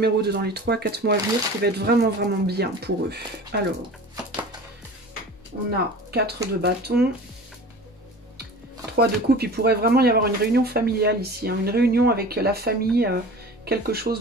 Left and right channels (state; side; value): normal; both; correlation 0.39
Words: 2 dans les 3 à 4 mois à venir qui va être vraiment, vraiment bien pour eux? Alors, on a 4 de bâton, 3 de coupe. Il pourrait vraiment y avoir une réunion familiale ici. Hein, une réunion avec la famille, quelque chose